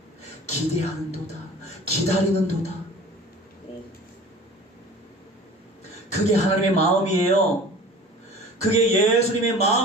기대하는도다, 기다리는도다. 그게 하나님의 마음이에요. 그게 예수님의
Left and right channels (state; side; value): normal; both; correlation 0.42